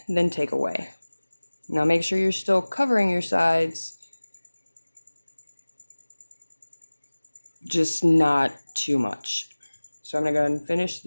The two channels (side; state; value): both; inverted; correlation -1.00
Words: than take away. Now make sure you're still covering your sides, just not too much. So I'm going to go ahead and finish